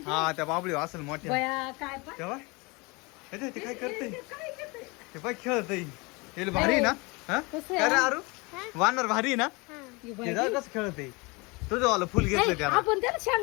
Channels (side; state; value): right; quieter; 26.8 dB